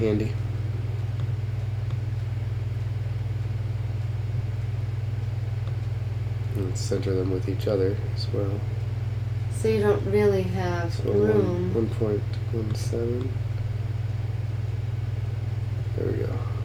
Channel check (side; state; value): both; identical; correlation 1.00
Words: And center them with each other as well. So you don't really have So room. 1.17. There we go.